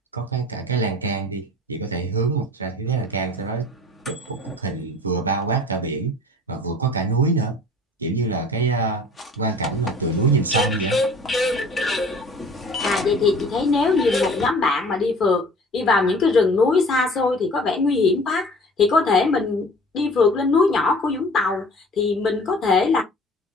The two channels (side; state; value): both; normal; correlation 0.46